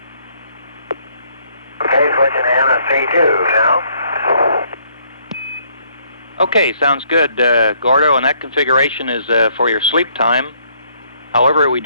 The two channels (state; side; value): inverted; both; correlation -0.67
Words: Okay, switching to MS32 now. Okay, sounds good, Gordo, and that configuration is for your sleep time. However, we